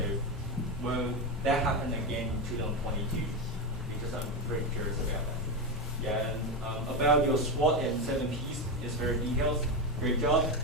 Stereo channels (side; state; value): both; normal; correlation 0.13